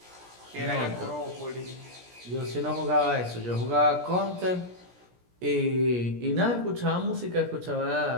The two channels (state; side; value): late; left; 17 ms